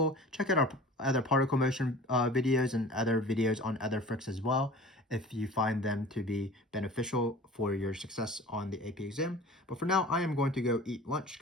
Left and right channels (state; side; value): normal; both; correlation 0.42